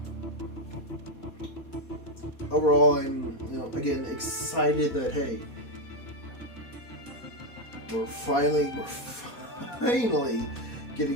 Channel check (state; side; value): late; right; 4.2 ms